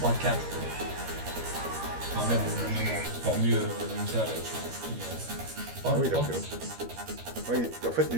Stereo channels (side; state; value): left; late; 13 ms